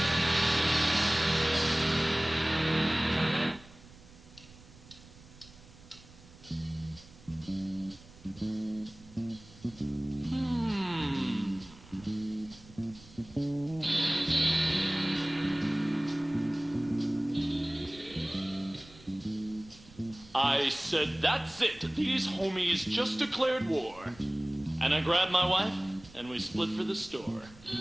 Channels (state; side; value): noise; right; rumble, 22 dB below the sound